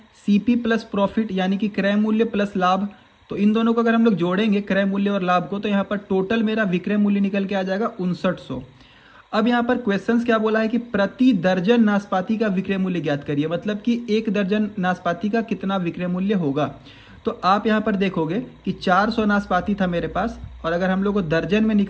सीपी प्लस प्रॉफिट यानी कि क्रय मूल्य प्लस लाभ। तो इन दोनों को अगर हम लोग जोड़ेंगे क्रय मूल्य और लाभ को तो यहाँ पर टोटल मेरा विक्रय मूल्य निकल के आ जाएगा 5900। अब यहाँ पर क्वेश्चंस क्या बोला है कि प्रति दर्जन नाशपाती का विक्रय मूल्य ज्ञात करिए, मतलब कि एक दर्जन नाशपाती का कितना विक्रय मूल्य होगा। तो आप यहाँ पर देखोगे कि 400 नाशपाती था मेरे पास और अगर हम लोग को दर्जन में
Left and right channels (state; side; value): identical; both; correlation 1.00